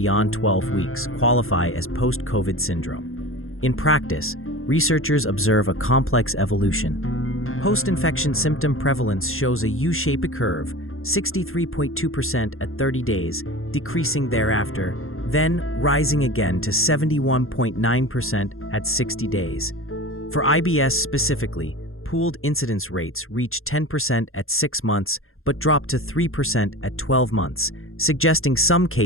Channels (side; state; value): right; late; 0.61 ms